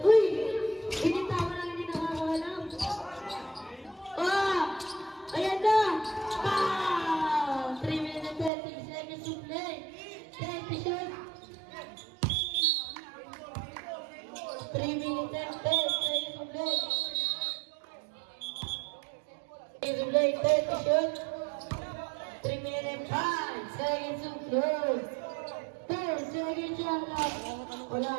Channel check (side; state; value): left; drops out; at 8.5 s